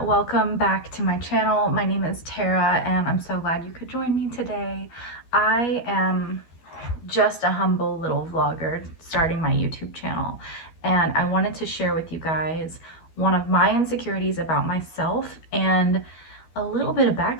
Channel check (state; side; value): late; right; 12 ms